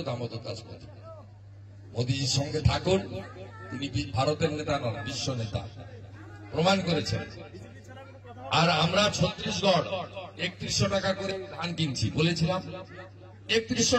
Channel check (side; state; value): both; identical; correlation 1.00